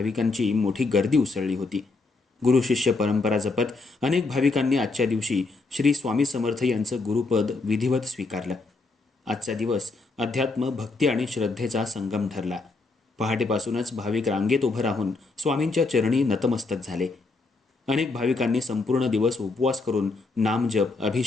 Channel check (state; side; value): quieter; right; 3.6 dB